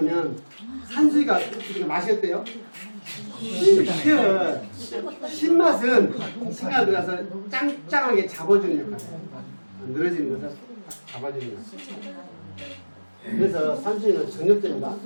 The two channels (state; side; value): inverted; both; correlation -1.00